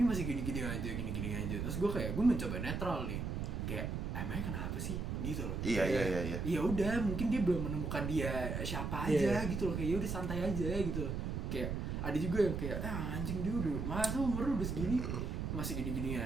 masih gini-gini aja, terus gue kayak, gue mencoba netral nih, kayak emangnya kenapa sih gitu loh. Iya. Ya udah, mungkin dia belum menemukan dia siapa aja gitu loh, kayak ya udah santai aja gitu loh. Kayak ada juga yang kayak anjing dia udah masa umur udah segini masih gini-gini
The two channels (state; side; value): noise; right; rumble, 2 dB below the sound